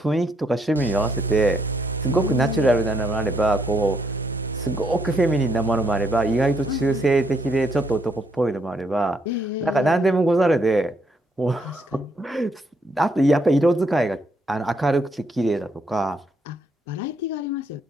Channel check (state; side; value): normal; both; correlation 0.72